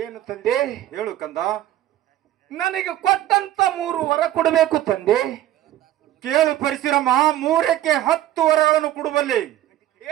ತಂದೆ? ಹೇಳು ಕಂದ. ನನಗೆ ಕೊಟ್ಟಂತ 3 ವರ ಕೊಡಬೇಕು ತಂದೆ. ಕೇಳು ಪರಶುರಾಮ, 3ಕ್ಕೆ 10 ವರಗಳನ್ನು ಕೊಡುವಲ್ಲಿ.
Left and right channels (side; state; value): left; quieter; 13.4 dB